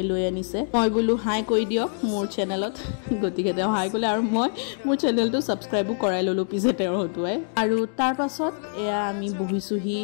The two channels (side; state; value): right; silent; digital silence